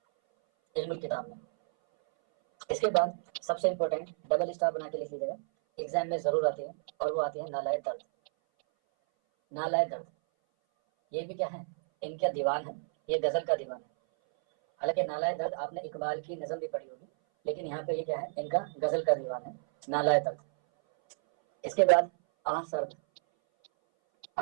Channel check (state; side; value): silent; left; 57 dB below the other